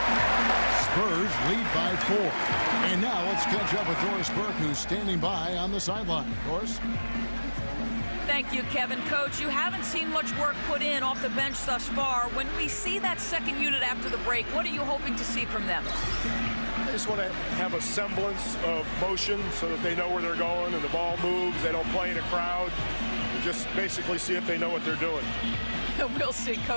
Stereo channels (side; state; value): both; inverted; correlation -1.00